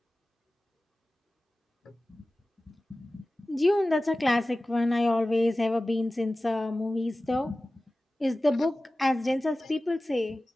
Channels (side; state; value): both; normal; correlation 0.96